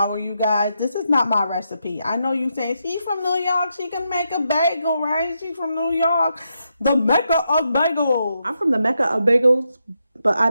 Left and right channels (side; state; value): both; inverted; correlation -0.83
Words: you guys. This is not my recipe. I know you say, she's from New York. She can make a bagel, right? She's from New York. The Mecca of bagels. I'm from the Mecca of bagels, but I